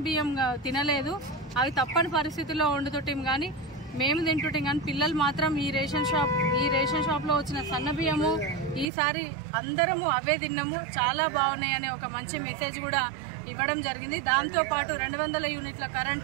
బియ్యం తినలేదు, అవి తప్పని పరిస్థితుల్లో వండుతుంటాం కానీ మేము తింటుంటాం కానీ పిల్లలు మాత్రం ఈ రేషన్ షాప్లో వచ్చిన సన్న బియ్యము ఈసారి అందరము అవే తిన్నాము, చాలా బాగున్నాయి అనే ఒక మంచి మెసేజ్ కూడా ఇవ్వడం జరిగింది. దాంతోపాటు 200 యూనిట్ల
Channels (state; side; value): drops out; left; at 8.8 s